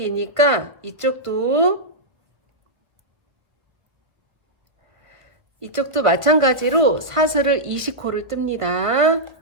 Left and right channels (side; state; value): left; late; 1.1 ms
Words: 이쪽도 마찬가지로 사슬을 20코를 뜹니다.